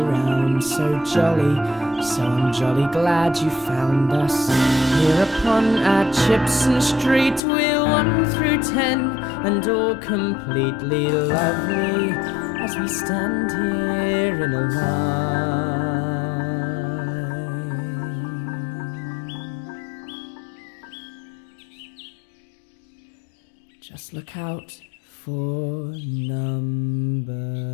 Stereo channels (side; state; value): right; drops out; at 7.4 s